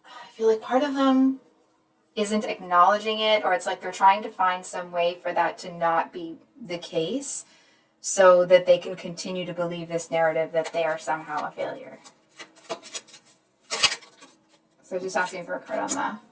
I feel like part of them isn't acknowledging it, or it's like they're trying to find some way for that to not be the case so that they can continue to believe this narrative that they are somehow a failure. So just asking for a card on the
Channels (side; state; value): both; identical; correlation 1.00